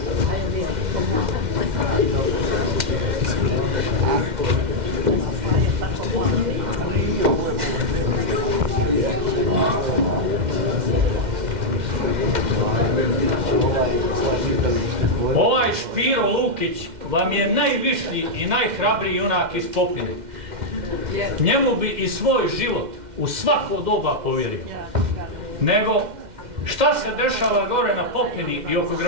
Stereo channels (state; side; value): late; left; 2.1 ms